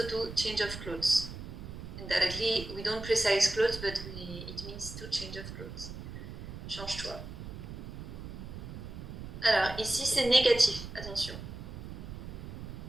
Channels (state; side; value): noise; right; rumble, 10 dB below the sound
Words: to change of clothes. Indirectly, we don't precise clothes, but it means to change of clothes. Change-toi. Alors, ici c'est négatif, attention.